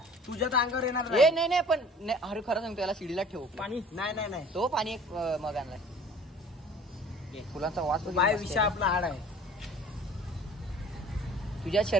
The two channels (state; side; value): normal; both; correlation 0.49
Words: तुझ्या तर अंगावर येणार नाही पण अरे खरं सांगतो, याला शिडीला ठेव पाणी, नाही तो पाणी एक मग आणलाय, फुलांचा वास बाय विषय आपला हाड आहे। तुझ्या